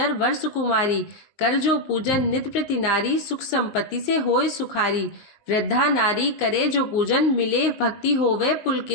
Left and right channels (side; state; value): right; late; 19 ms